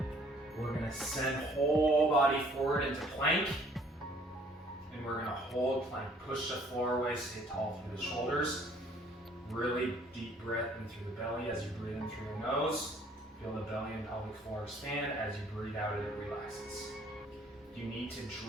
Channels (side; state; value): both; normal; correlation 0.59